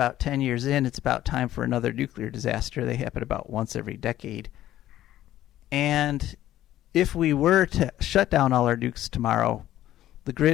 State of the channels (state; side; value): quieter; right; 13.3 dB